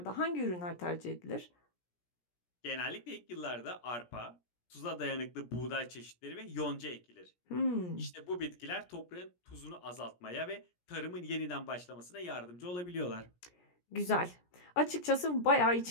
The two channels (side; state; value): right; late; 17 ms